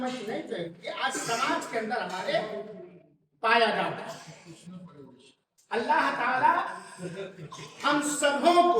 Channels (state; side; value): identical; both; correlation 1.00